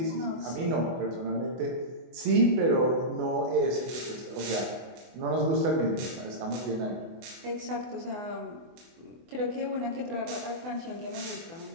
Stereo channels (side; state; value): left; late; 24 ms